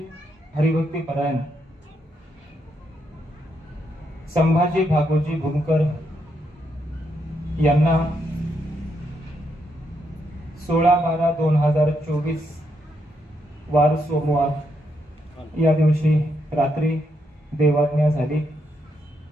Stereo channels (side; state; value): both; normal; correlation 0.79